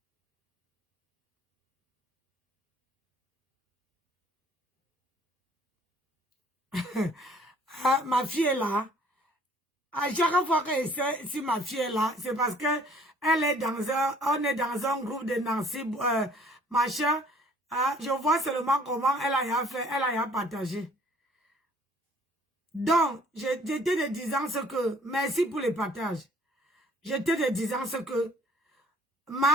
Ah, ma fille est là. À chaque fois que si ma fille est là, c'est parce que elle est on est dans un groupe de Nancy, machin. Je vois seulement comment elle a fait, elle a partagé. Donc, j'étais de disant ce que, merci pour les partages. J'étais de disant ce que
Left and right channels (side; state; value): both; normal; correlation 0.57